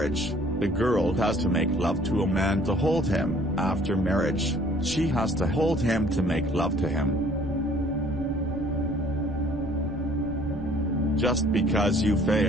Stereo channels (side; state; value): right; noise; rumble, 13 dB below the sound